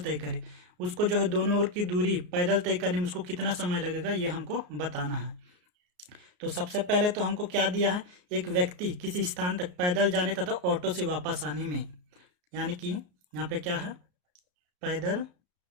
करे, उसको जो है दोनों ओर की दूरी पैदल तय करने में उसको कितना समय लगेगा, ये हमको बताना है। तो सबसे पहले तो हमको क्या दिया है, एक व्यक्ति किसी स्थान तक पैदल जाने तथा ऑटो से वापस आने में, यानी कि यहाँ पे क्या है, पैदल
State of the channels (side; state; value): left; late; 33 ms